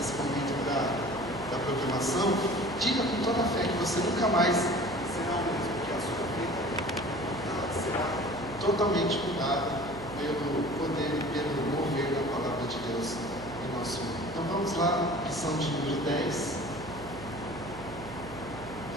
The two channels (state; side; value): noise; right; hum, 14 dB below the sound